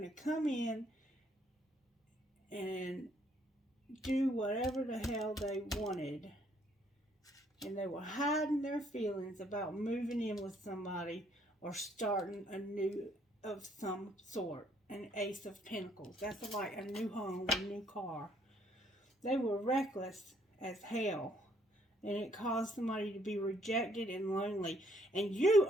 to come in and do whatever the hell they wanted. And they were hiding their feelings about moving in with somebody or starting a new of some sort. An Ace of Pentacles. That's like a new home, a new car. They were reckless as hell. And it caused somebody to be rejected and lonely. And you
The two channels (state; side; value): normal; both; correlation 0.67